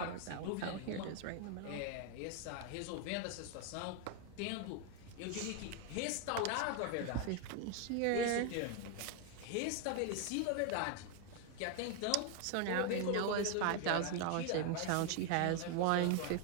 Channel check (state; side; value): different; both; correlation 0.01